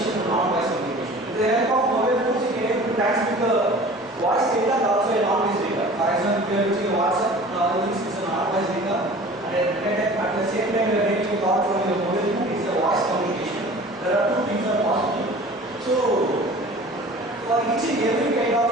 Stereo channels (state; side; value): normal; both; correlation 0.43